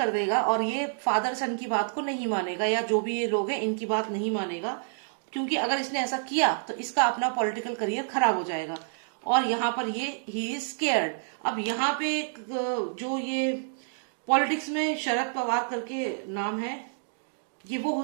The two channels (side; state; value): left; silent; digital silence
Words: देगा और ये फादर सन की बात को नहीं मानेगा, या जो भी ये लोग हैं इनकी बात नहीं मानेगा। क्योंकि अगर इसने ऐसा किया तो इसका अपना पॉलिटिकल करियर खराब हो जाएगा। और यहाँ पर ये ही इज स्केयर्ड। अब यहाँ पे जो ये पॉलिटिक्स में शरद पवार करके नाम है, ये वो हो